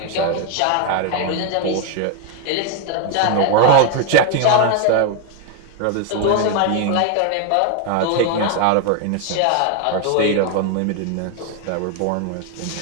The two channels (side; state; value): both; different; correlation 0.01